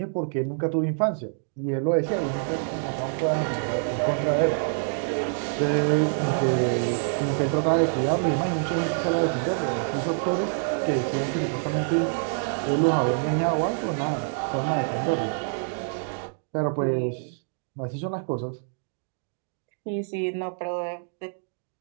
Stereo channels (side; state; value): left; silent; digital silence